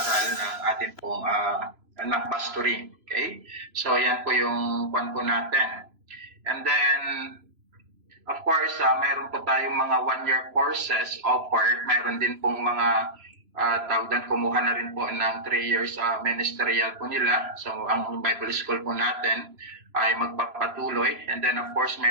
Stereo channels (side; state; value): left; late; 3.0 ms